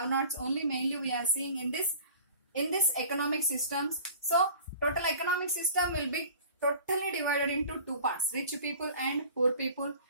Only mainly we are seeing in this economic systems. So total economic system will be totally divided into two parts, rich people and poor people.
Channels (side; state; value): both; inverted; correlation -0.44